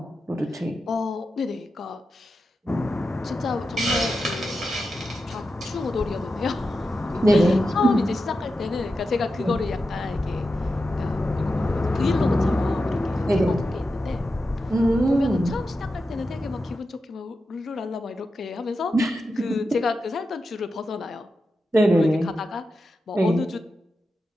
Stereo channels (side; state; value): both; normal; correlation 0.90